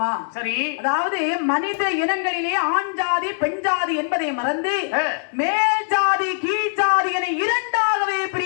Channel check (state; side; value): silent; right; digital silence